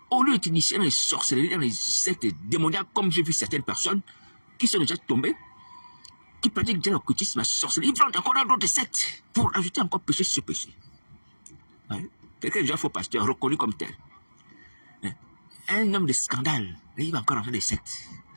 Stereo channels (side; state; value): both; inverted; correlation -1.00